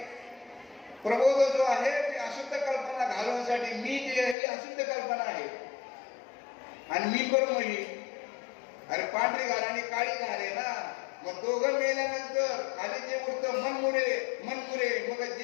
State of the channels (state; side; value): drops out; right; at 4.4 s